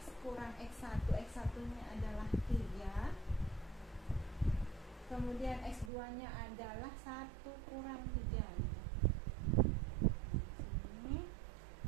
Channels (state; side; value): drops out; left; at 5.9 s